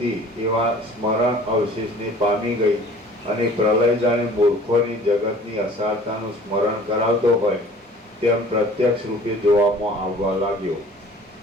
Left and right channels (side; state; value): both; normal; correlation 0.49